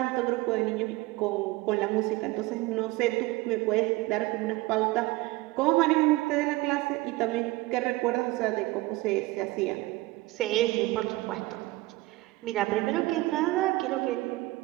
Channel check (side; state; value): left; quieter; 20.2 dB